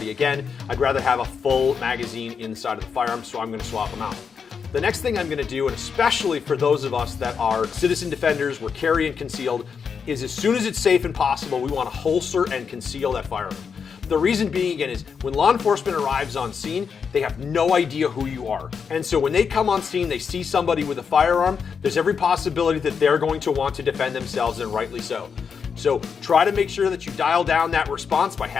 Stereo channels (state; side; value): quieter; right; 6.3 dB